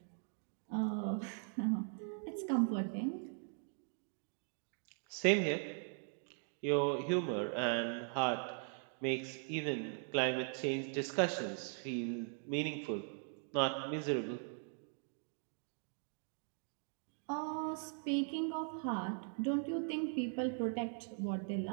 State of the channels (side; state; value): left; silent; 51 dB below the other